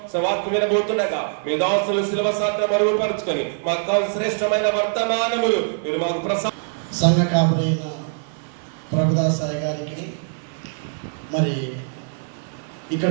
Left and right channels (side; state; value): left; silent; 58 dB below the other